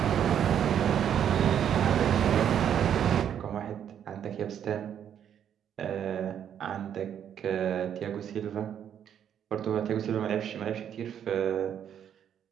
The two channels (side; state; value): left; quieter; 9.2 dB